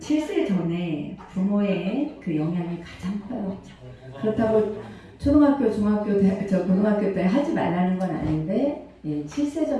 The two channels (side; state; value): both; identical; correlation 1.00